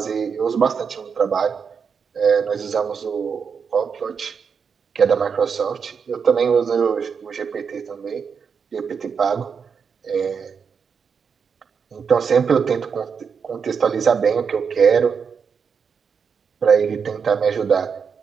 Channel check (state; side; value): quieter; left; 6.2 dB